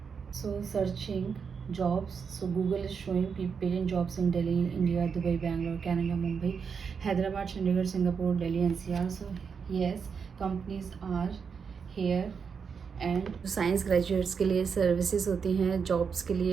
searching jobs. So Google is showing patent jobs in Delhi, India, Dubai, Bangalore, Canada, Mumbai, Hyderabad, Chandigarh, Singapore, Delhi, NCR. So yes, companies are here. And science graduates के लिए सर्विसेज होती हैं, जॉब्स के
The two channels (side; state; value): left; quieter; 6.1 dB